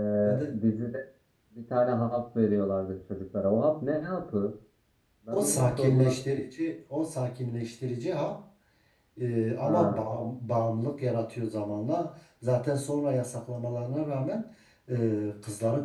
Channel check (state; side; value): identical; both; correlation 1.00